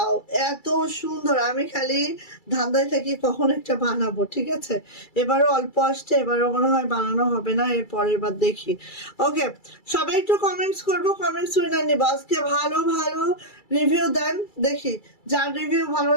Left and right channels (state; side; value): late; right; 2.3 ms